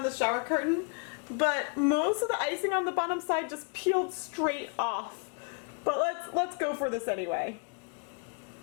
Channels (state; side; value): quieter; right; 36.0 dB